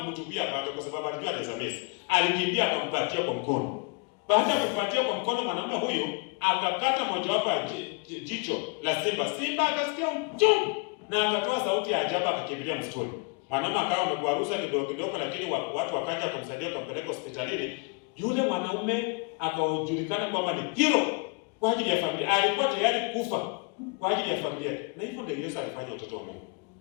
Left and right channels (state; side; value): quieter; right; 32.9 dB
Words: panga kwa sababu alijua anaweza mesi. Alikimbia akampatia kwa mkono. Baada ya kumpatia kwa mkono, mwanaume huyu akakata mojawapo ya jicho la simba. Simba akasikia uchungu na akatoa sauti ya ajabu, akakimbilia msituni. Mwanaume akawa amegwaruza kidogo, lakini watu wakaja kumsaidia, kumpeleka hospitalini. Yule mwanaume akajulikana kwamba ni hero kwa ajili ya familia. Alikuwa tayari kufa kwa ajili ya familia. Na hivyo ndio Yesu alifanya watoto wa Mungu.